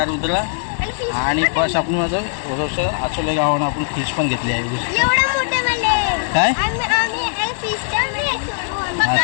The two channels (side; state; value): right; silent; digital silence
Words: रुद्र आणि बस आपण माझं आचोले गावानं आपण फिश पण घेतली आहे. काय